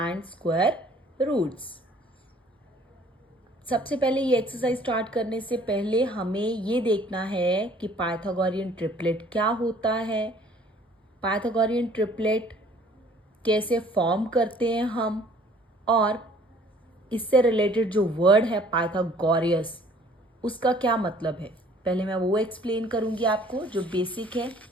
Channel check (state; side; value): normal; both; correlation 0.55